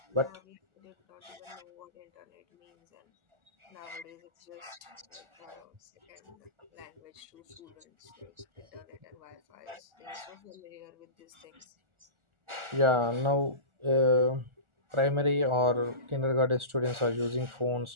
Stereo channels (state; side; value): late; left; 1.4 ms